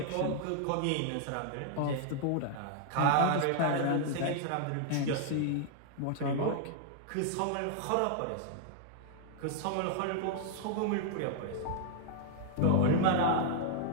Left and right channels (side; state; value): both; different; correlation 0.00